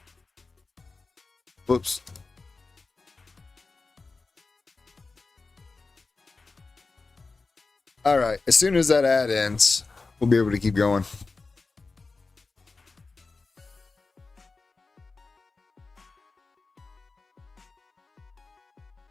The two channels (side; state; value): right; quieter; 3.9 dB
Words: Whoops. All right. As soon as that ad ends, we'll be able to keep going.